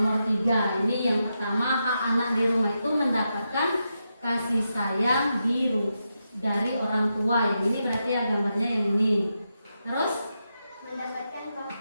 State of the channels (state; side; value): inverted; both; correlation -0.86